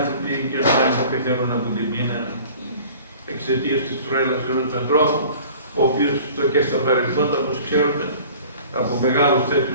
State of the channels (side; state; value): both; inverted; correlation -0.46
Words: και να πεθαίνουν από την πείνα εξαιτίας της τρέλας ενός ανθρώπου, ο οποίος και στα παρελθόντα, όπως ξέρουμε, από μεγάλους